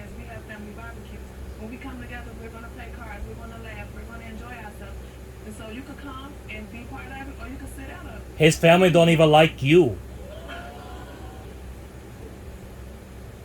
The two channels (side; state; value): both; identical; correlation 1.00